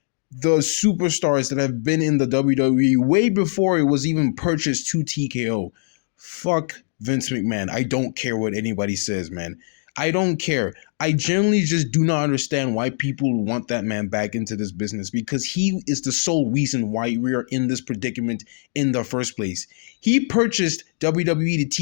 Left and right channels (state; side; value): silent; right; digital silence